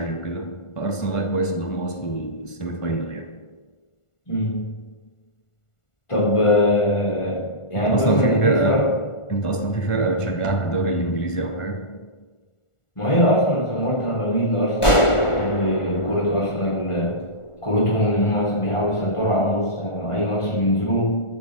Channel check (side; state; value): right; late; 1.4 ms